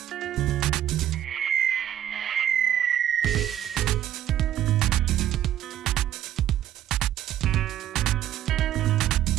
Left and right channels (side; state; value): left; quieter; 11.5 dB